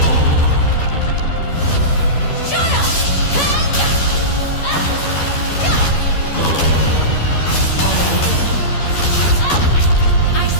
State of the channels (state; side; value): late; right; 12 ms